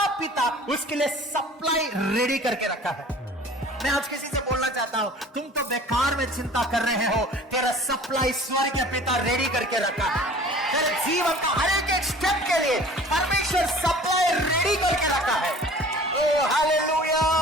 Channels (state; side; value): normal; both; correlation 0.46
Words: पिता उसके लिए सप्लाई रेडी करके रखा है। मैं आज किसी से बोलना चाहता हूं, तुम तो बेकार में चिंता कर रहे हो, तेरा सप्लाई स्वर्ग के पिता रेडी करके रखा है। तेरे जीवन का हर एक स्टेप के लिए परमेश्वर सप्लाई रेडी करके रखा है। ओ हालेलुया,